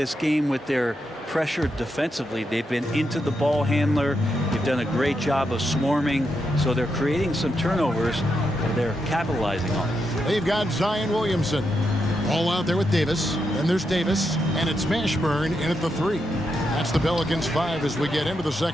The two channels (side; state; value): both; normal; correlation 0.83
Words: game with their pressure defensively. They've been into the ball handler. They've done a great job of swarming. So they're creating some turnovers that they're capitalizing on. They've got Zion Williamson all out there with Davis. Then there's Davis, and it's Mashburn in at the 3. That's the Pelicans 5 as we get into the